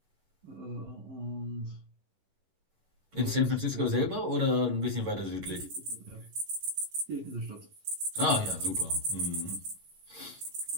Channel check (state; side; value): late; left; 11 ms